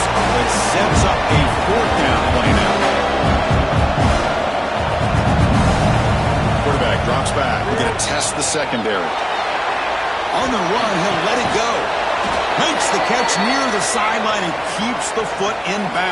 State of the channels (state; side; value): identical; both; correlation 1.00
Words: but sets up a fourth down play now. Quarterback drops back. We're going to test the secondary. On the run, he'll let it go. Makes the catch near the sideline and keeps the foot in